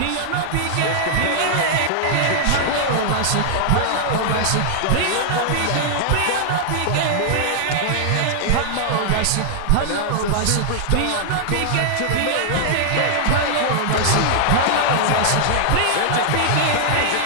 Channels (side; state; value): both; different; correlation -0.01